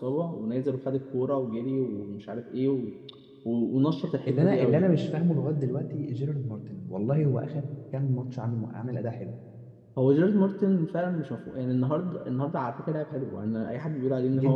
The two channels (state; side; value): identical; both; correlation 1.00